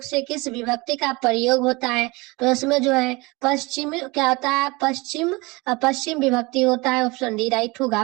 से किस विभक्ति का प्रयोग होता है। तो इसमें जो है पश्चिम क्या होता है, पश्चिम विभक्ति होता है, ऑप्शन डी राइट होगा।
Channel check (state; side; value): quieter; left; 24.5 dB